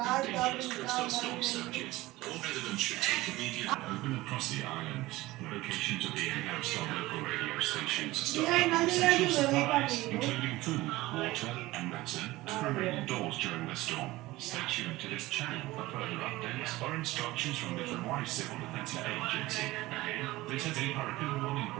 Ay, está brincando. Open across the island, the locations are being announced on local radio stations. Ay, nadie le ayuda en el camino. Including food, water, and medicine to remain indoors during the storm. Stay tuned to this channel for further updates or instructions from the Hawaii Civil Defense Agency. Again, this is a hurricane warning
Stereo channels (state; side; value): quieter; left; 18.7 dB